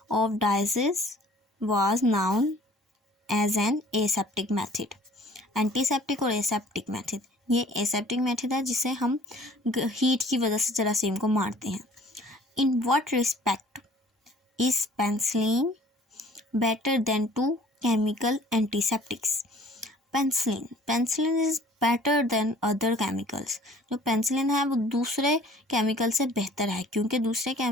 of disease was known as an aseptic method. Antiseptic और aseptic method, ये aseptic method है जिसे हम हीट की वजह से जरासीम को मारते हैं। In what respect is penicillin better than to chemical antiseptics? Penicillin is better than other chemicals. जो पेंसिलिन है वो दूसरे केमिकल से बेहतर है, क्योंकि दूसरे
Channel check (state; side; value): normal; both; correlation 0.52